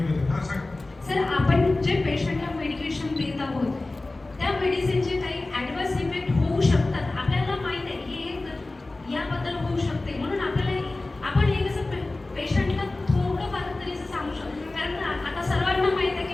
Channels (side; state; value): right; quieter; 3.0 dB